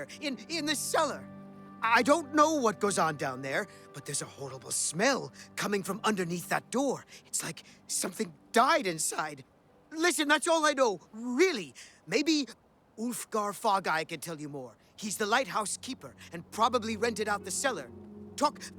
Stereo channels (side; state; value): both; identical; correlation 1.00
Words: in the cellar. I don't know what goes on down there, but there's a horrible smell coming from underneath that door. It's like something died inside. Listen, that's all I know, really. Maybe Ulfgar Fogeye can tell you more. He's the lighthouse keeper and probably rented out the cellar. Talk